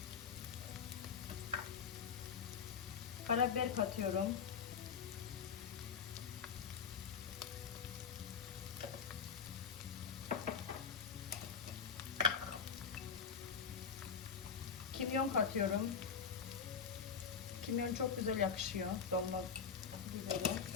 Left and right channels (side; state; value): right; quieter; 6.5 dB